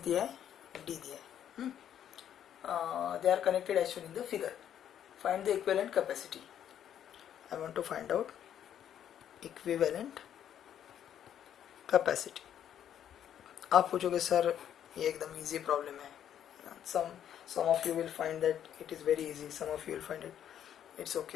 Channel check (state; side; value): quieter; right; 10.0 dB